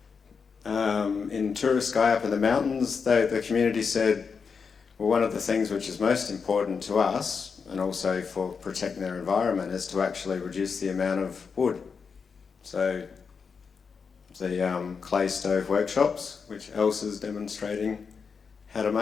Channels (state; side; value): quieter; right; 5.7 dB